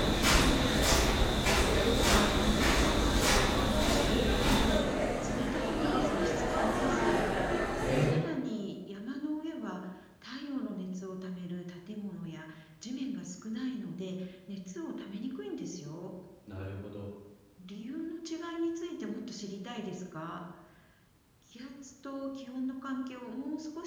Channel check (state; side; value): identical; both; correlation 1.00